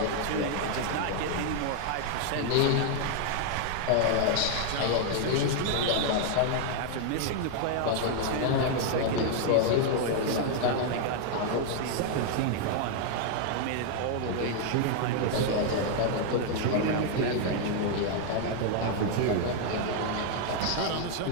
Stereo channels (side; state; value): both; different; correlation 0.00